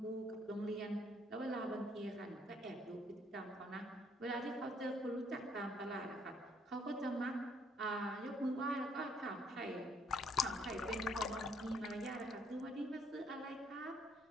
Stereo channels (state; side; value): normal; both; correlation 0.66